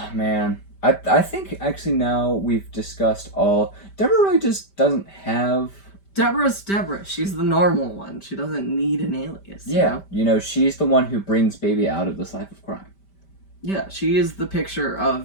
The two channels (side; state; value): right; late; 5.1 ms